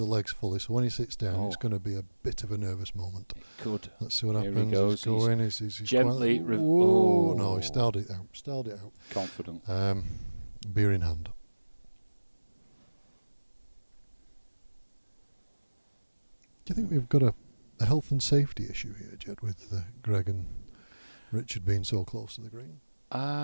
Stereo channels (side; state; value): both; inverted; correlation -1.00